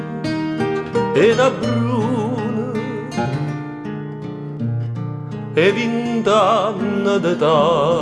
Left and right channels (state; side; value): identical; both; correlation 1.00